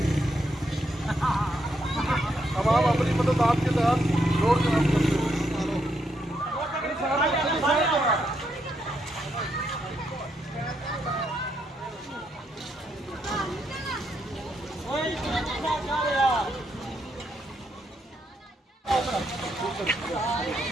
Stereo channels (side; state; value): both; normal; correlation 0.78